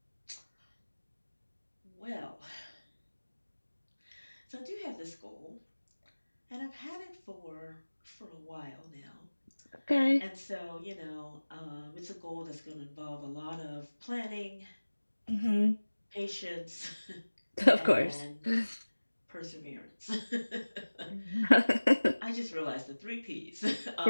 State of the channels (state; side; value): inverted; both; correlation -1.00